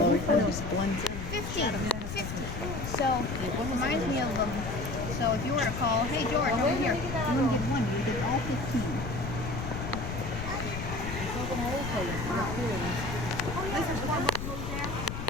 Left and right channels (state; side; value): noise; left; rumble, 6 dB below the sound